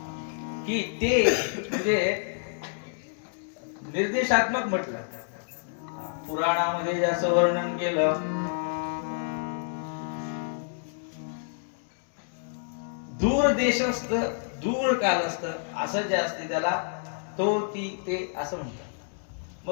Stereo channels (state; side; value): silent; right; digital silence